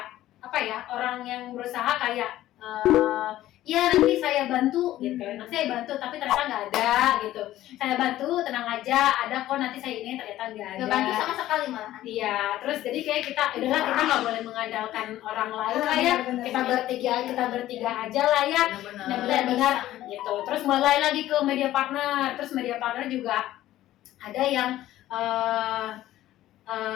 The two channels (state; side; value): quieter; right; 14.3 dB